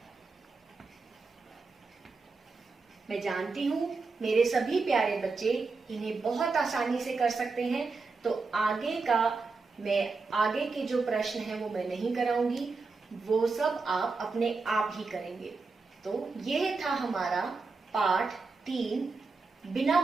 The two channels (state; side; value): quieter; left; 4.2 dB